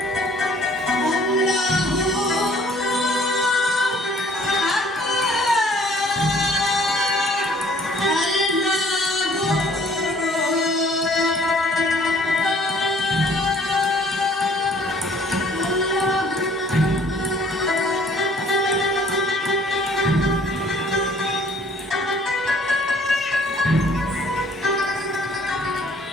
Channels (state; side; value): normal; both; correlation 0.57